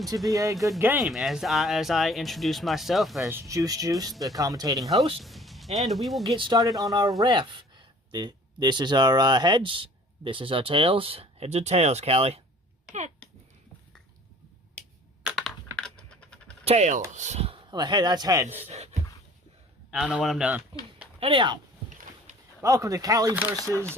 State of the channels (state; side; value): normal; both; correlation 0.50